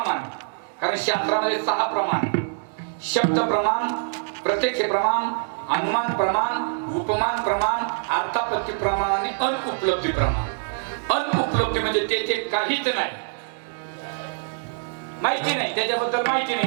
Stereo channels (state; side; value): silent; left; digital silence